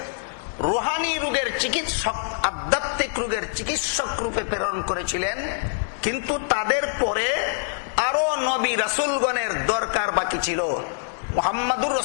রুহানি রোগের চিকিৎসক, আধ্যাত্মিক রোগের চিকিৎসক রূপে প্রেরণ করেছিলেন। কিন্তু তাদের পরে আরো নবী রাসূলগণের দরকার বাকি ছিল। মুহাম্মাদুর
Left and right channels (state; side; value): silent; right; digital silence